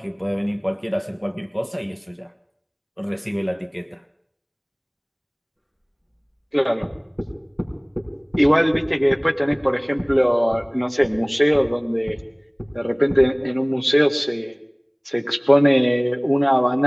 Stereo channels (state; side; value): identical; both; correlation 1.00